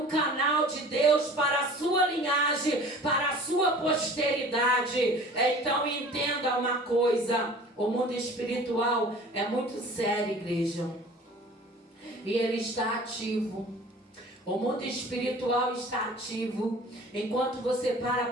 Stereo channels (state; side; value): normal; both; correlation 0.45